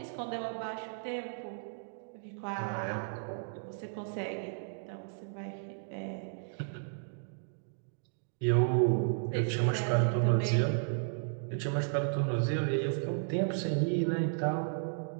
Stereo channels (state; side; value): silent; left; digital silence